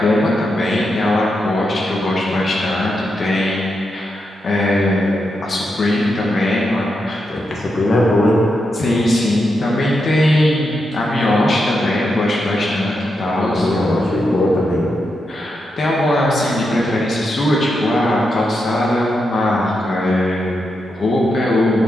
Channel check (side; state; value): both; normal; correlation 0.85